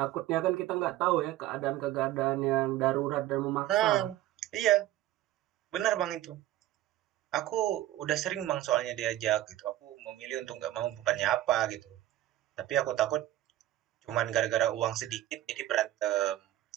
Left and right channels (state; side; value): quieter; left; 14.3 dB